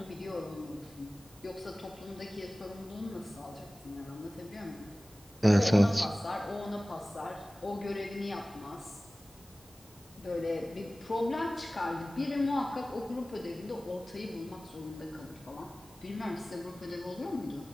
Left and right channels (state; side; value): normal; both; correlation 0.97